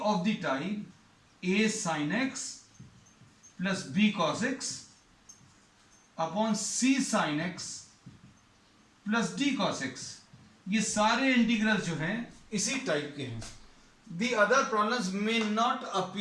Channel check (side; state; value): both; identical; correlation 1.00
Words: of the type a sin x plus b cos x upon c sin x plus d cos x. ये सारे इंटीग्रल्स जो हैं इसी टाइप के हैं. The other problems may not